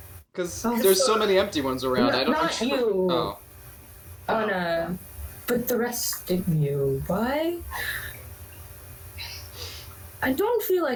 Because Oh, there's so many empty ones around. I don't. Not you. Oh. Anna, but the rest of you. Why? I don't feel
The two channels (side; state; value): both; identical; correlation 1.00